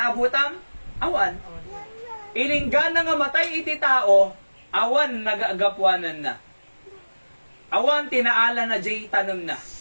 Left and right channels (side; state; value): both; inverted; correlation -1.00